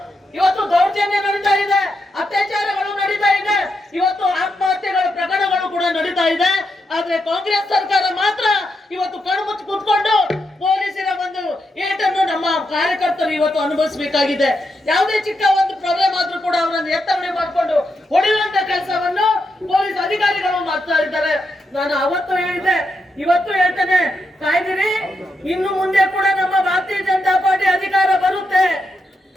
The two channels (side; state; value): both; normal; correlation 0.83